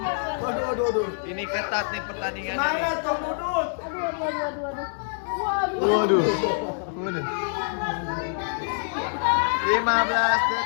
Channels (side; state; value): right; silent; digital silence